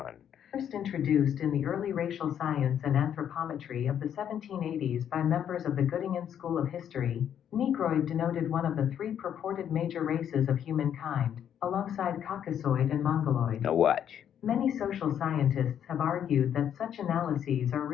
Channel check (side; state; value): right; quieter; 9.3 dB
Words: First introduced in the early racial science and anthropometry of the 1780s by members of the Göttingen School of History, Negroid denoted one of the three purported major races of humankind, alongside Caucasoid and Mongoloid. Now watch. Many social scientists have argued that such analyses are